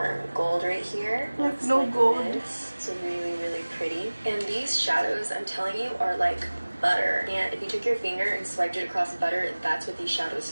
gold right here. Like no gold. It's really, really pretty. And these shadows, I'm telling you, are like butter. And if you took your finger and swiped it across butter, that's what these shadows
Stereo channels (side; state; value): both; inverted; correlation -1.00